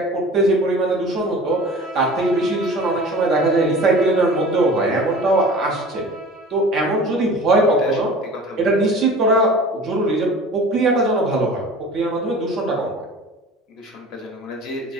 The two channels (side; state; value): both; normal; correlation 0.41